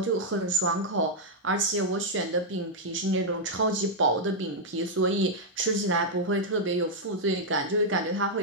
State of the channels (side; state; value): both; normal; correlation -0.04